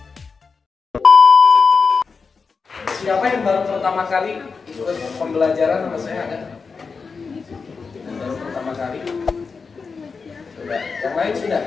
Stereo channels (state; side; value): quieter; right; 5.0 dB